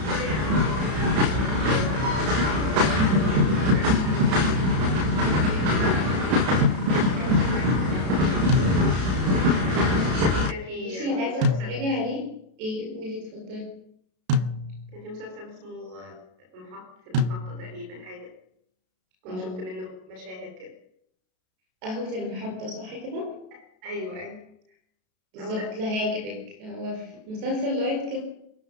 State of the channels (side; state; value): left; late; 32 ms